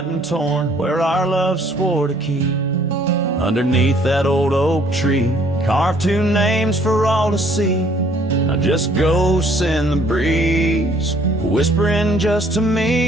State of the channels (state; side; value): normal; both; correlation 0.61